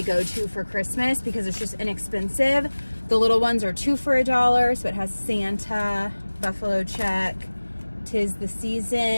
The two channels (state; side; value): inverted; both; correlation -1.00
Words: go-to for Christmas because it's just inexpensive. The little ones are 2 for $1. So it has Santa, buffalo check, 'tis the